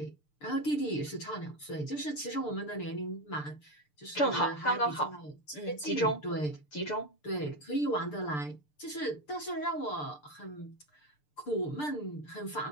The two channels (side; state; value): right; late; 6.7 ms